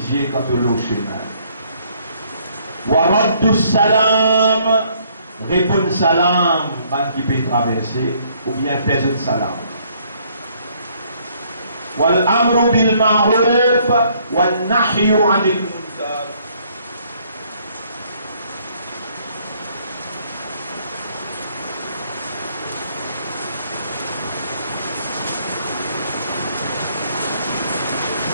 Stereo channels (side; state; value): both; inverted; correlation -0.65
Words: quand tu l'eau chemin. Wa Raddul Salam, répondre salam, quand qui peut traverser, ou bien faire un salam. Wal amru bil ma'ruf, wal nahyu anil munkar.